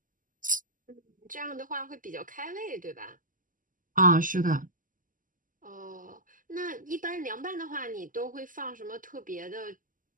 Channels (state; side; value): late; left; 0.39 ms